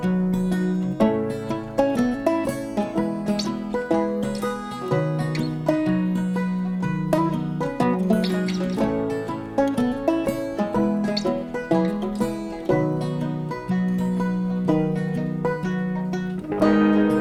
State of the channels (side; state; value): both; identical; correlation 1.00